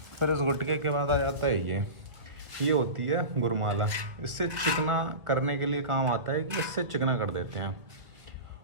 फिर इस गुटके के बाद आ जाता है ये होती है गुरमाला। इससे चिकना करने के लिए काम आता है, कि इससे चिकना कर देते हैं।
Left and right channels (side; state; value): left; late; 1.7 ms